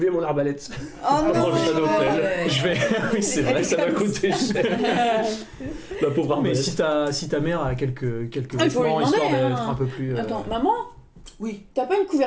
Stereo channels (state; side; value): identical; both; correlation 1.00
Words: mon arbalète. Oh non, j'ai pas d'offel. Je vais. Oui, c'est vrai. Ça m'a coûté cher. Ma pauvre Mais arbalète. si ta mère a quelques Ah, il faut lui vêtements demander, histoire d'être hein. un peu plus. Attends, maman, Oui. t'as pas une